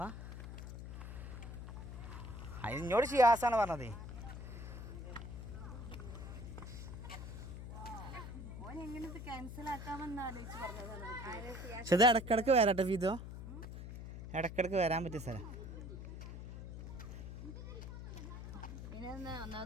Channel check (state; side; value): noise; left; hum, 9 dB below the sound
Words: അതിനോട് ഷിയാസാണ് പറഞ്ഞത്. പക്ഷെ ഇത് ഇടക്കിടക്ക് വരാട്ടെ ഫീതോ, ഇടക്കിടക്ക് വരാൻ പറ്റിയ സ്ഥലം.